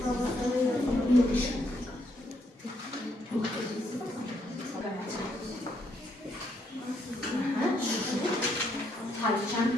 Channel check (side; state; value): both; normal; correlation 0.74